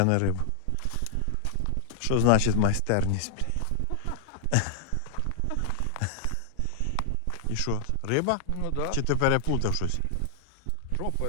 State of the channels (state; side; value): different; both; correlation 0.00